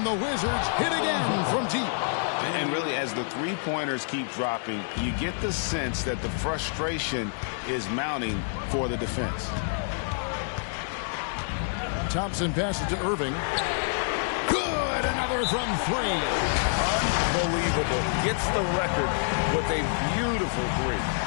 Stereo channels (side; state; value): right; silent; digital silence